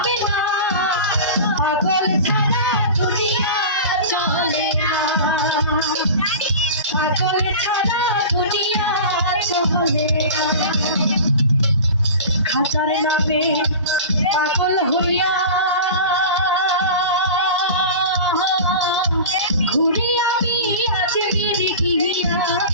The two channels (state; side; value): inverted; both; correlation -0.33